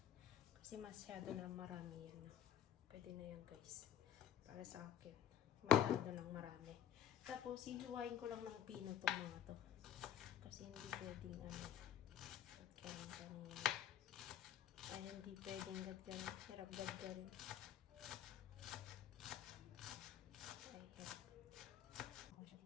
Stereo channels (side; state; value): right; quieter; 10.0 dB